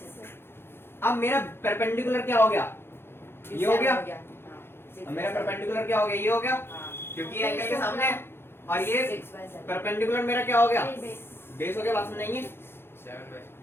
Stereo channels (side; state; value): right; late; 0.11 ms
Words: अब मेरा परपेंडिकुलर क्या हो गया, ये हो गया। अब मेरा परपेंडिकुलर क्या हो गया, ये हो गया, क्योंकि ये एंगल के सामने है। और ये 6 by 7 परपेंडिकुलर मेरा क्या हो गया, बेस हो गया, बात सुनाइए।